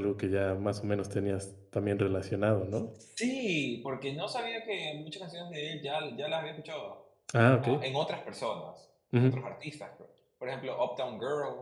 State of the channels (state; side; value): identical; both; correlation 1.00